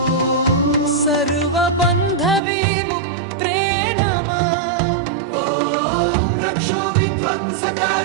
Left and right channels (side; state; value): left; drops out; at 2.4 s